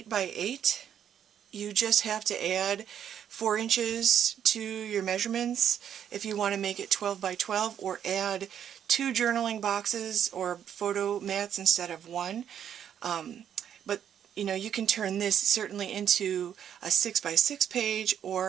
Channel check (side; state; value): left; quieter; 9.2 dB